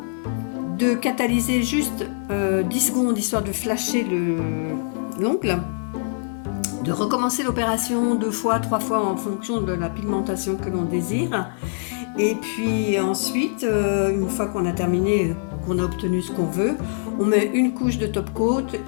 de catalyser juste 10 secondes histoire de flasher l'ongle, de recommencer l'opération 2 fois, 3 fois en fonction de la pigmentation que l'on désire. Et puis ensuite, une fois qu'on a terminé, qu'on a obtenu ce qu'on veut, on met une couche de top coat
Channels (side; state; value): right; silent; digital silence